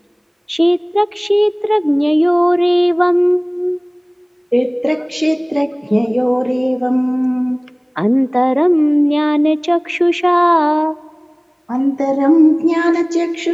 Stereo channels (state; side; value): identical; both; correlation 1.00